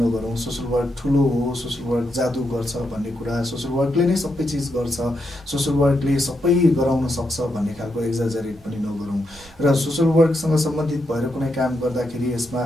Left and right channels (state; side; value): normal; both; correlation 0.82